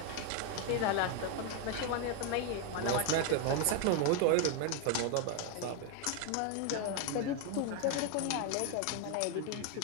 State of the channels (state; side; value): different; both; correlation 0.01